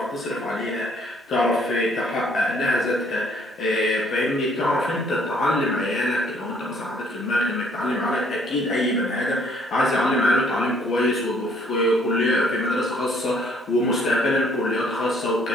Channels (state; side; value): normal; both; correlation 0.63